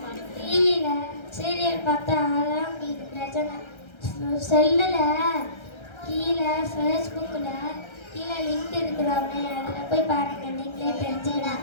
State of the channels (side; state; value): right; late; 1.3 ms